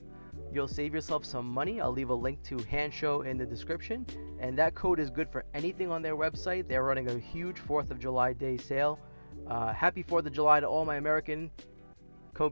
you'll save yourself some money. I'll leave a link to Hansshow in the description, and that code is good for anything on their website. They're running a huge 4th of July day sale. Happy 4th of July to all my American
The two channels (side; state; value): both; inverted; correlation -1.00